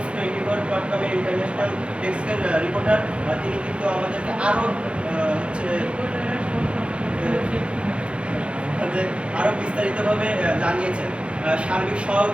24.com ইন্টারন্যাশনাল ডেস্কের রিপোর্টার, তিনি কিন্তু আমাদেরকে আরও আরও বিস্তারিতভাবে জানিয়েছেন। সার্বিক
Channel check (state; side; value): late; left; 0.059 ms